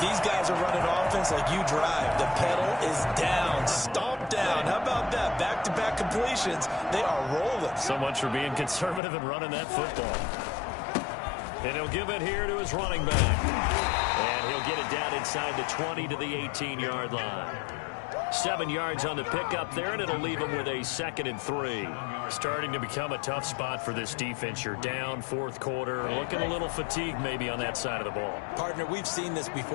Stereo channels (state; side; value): drops out; right; at 9.0 s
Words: guys are running offense like you drive. The pedal is down, stomped down. How about that? Back-to-back completions. They are rolling. So much for being conservative and running that football. And he'll give it here to his running back. And he'll get it down inside the 20 to the 18-yard line. 7 yards on the pickup there, and it'll leave him with a 2nd and 3. Starting to become a tough spot for this defense. You're down, fourth quarter, looking a little fatigued maybe on that side of the ball. Partner, we've seen this